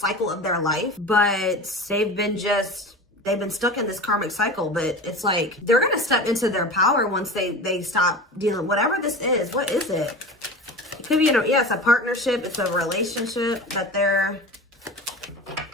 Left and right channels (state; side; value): normal; both; correlation 0.32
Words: of their life. But they've been stuck in this karmic cycle. But it's like they're going to step into their power once they stop dealing, whatever this is. What is it? It could be, yeah, it's a partnership. It's a relationship that they're,